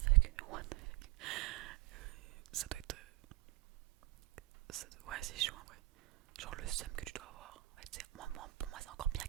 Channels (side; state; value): left; quieter; 18.4 dB